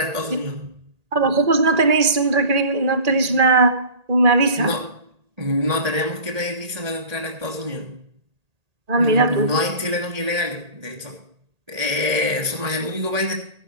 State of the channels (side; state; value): left; late; 1.8 ms